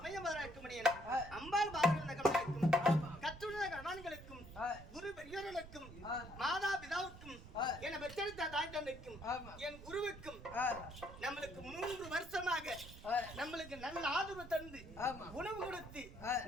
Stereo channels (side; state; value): right; noise; rumble, 15 dB below the sound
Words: இருக்க முடியல. அம்பாள் பாரதம் கற்றுள்ள கணவான்களுக்கும் குரு பெரியோர்களுக்கும் மாதா பிதாவுக்கும் என பெற்றெடுத்த தாய் தந்தைக்கும் என் குருவுக்கும் நம்மளுக்கு 3 வருஷமாக நம்மளுக்கு நல்ல ஆதரவு தந்து உணவு கொடுத்து